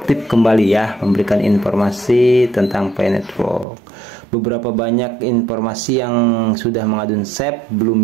kembali ya, memberikan informasi tentang Pi Network. Beberapa banyak informasi yang sudah Mang Adun save, belum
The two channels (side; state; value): left; drops out; at 3.7 s